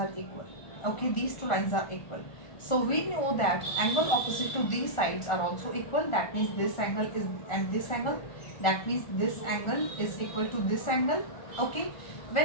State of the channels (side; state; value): right; late; 1.4 ms